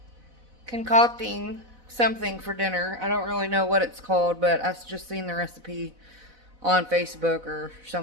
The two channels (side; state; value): left; late; 4.0 ms